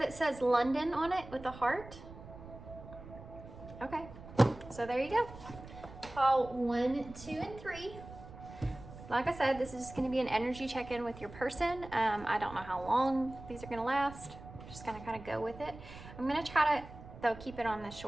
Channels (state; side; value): noise; right; rumble, 15 dB below the sound